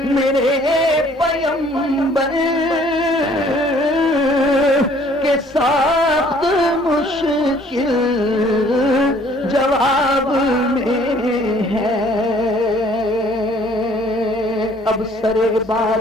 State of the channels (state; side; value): normal; both; correlation 0.58